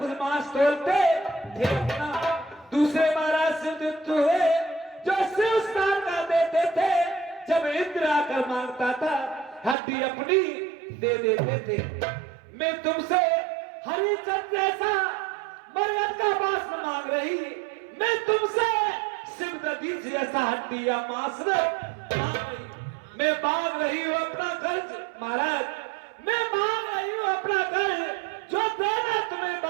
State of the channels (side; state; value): left; drops out; at 9.8 s